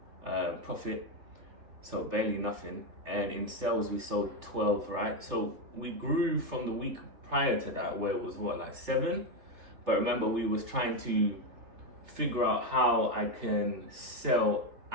profit, so barely nothing. And in sales we sold 12, right? So we grew from the week prior to that, where it was 7. But remember, we was trying to figure out how I can sell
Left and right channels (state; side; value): late; left; 3.4 ms